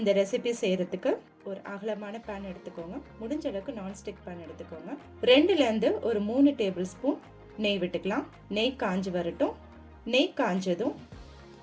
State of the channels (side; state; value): both; identical; correlation 1.00